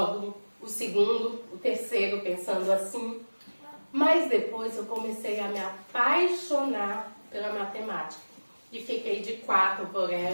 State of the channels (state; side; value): inverted; both; correlation -1.00